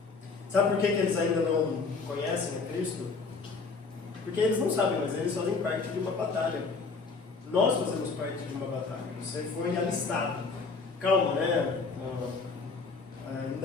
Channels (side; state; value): right; quieter; 4.4 dB